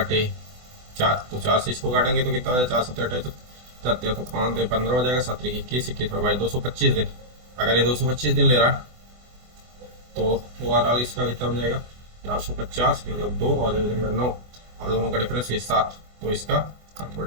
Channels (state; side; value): late; left; 24 ms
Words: तो 4 से इसको काटेंगे तो कितना हो जाएगा, 4 से 28, तो 5 दिन 15 हो जाएगा, 7×21 21 225 दिन। अगर ये 225 दिन ले रहा है, तो ओवरऑल इसका कितना हो जाएगा, 450 मतलब 2, और ये हो जाएगा 9, और दोनों का डिफरेंस ये 7, तो इसका